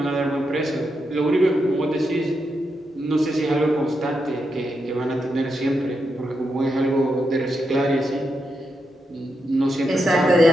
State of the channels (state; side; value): normal; both; correlation 0.85